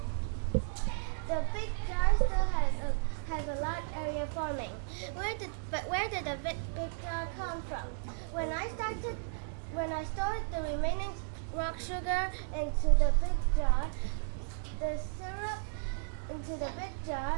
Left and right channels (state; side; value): silent; left; digital silence